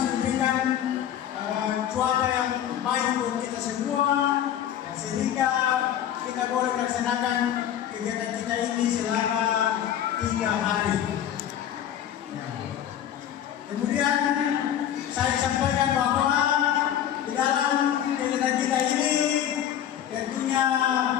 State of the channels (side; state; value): right; quieter; 10.5 dB